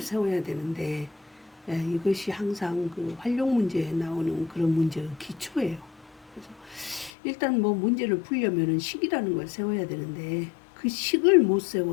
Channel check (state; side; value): drops out; right; at 7.1 s